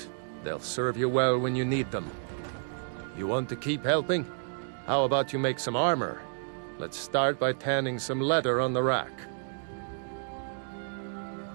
They'll serve you well when you need them. You want to keep helping? How about you make some armor? Let's start by tanning some leather on the rack.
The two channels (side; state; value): left; silent; digital silence